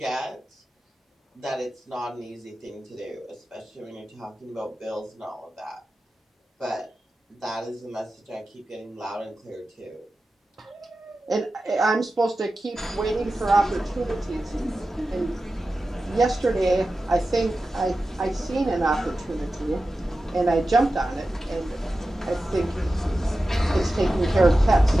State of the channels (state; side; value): normal; both; correlation 0.93